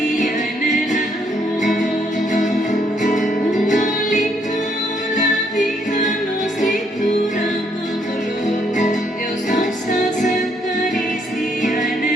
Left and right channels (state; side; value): normal; both; correlation 0.71